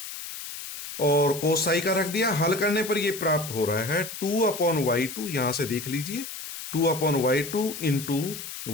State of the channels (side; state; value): left; noise; hiss, 10 dB below the sound